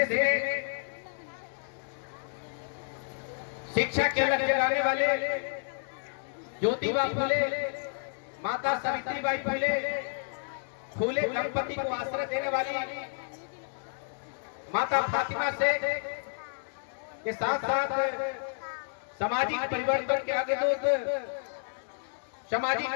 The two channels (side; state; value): right; silent; digital silence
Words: में शिक्षा के लक्ष्य जगाने वाले ज्योतिबा फुले, माता सावित्रीबाई फुले, फुले दंपति को आश्रय देने वाली माता फातिमा शेख के साथ साथ सामाजिक परिवर्तन के आगे दूत, सामाजिक